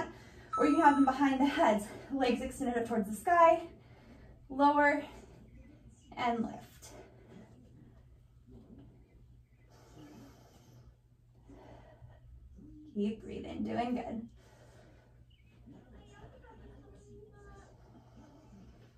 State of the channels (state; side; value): identical; both; correlation 1.00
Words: or you can have them behind the heads, legs extended up towards the sky, lower, and lift. Keep breathing, doing good.